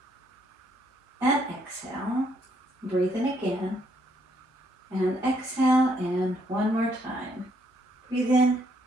and exhale. Breathe in again and exhale, and one more time. Breathe in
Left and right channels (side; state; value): both; normal; correlation 0.70